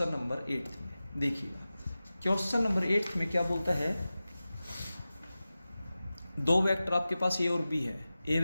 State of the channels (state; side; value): inverted; both; correlation -0.96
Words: नंबर 8 में। देखिएगा क्वेश्चन नंबर 8 में क्या बोलता है, दो वेक्टर आपके पास ए और बी है। ए